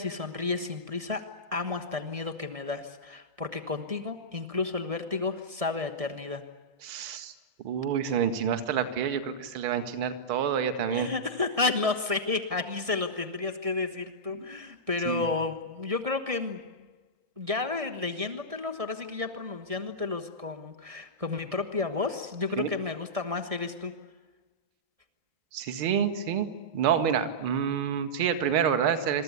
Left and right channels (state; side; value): late; left; 1.6 ms